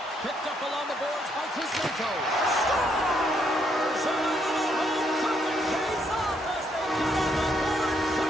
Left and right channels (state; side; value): normal; both; correlation 0.73